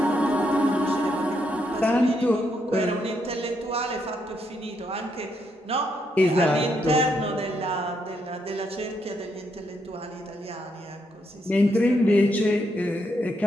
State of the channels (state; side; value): normal; both; correlation 0.78